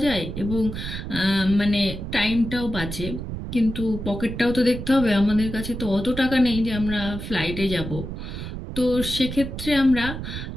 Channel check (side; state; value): right; noise; rumble, 7 dB below the sound